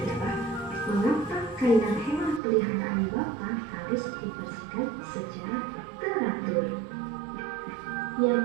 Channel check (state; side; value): drops out; left; at 2.4 s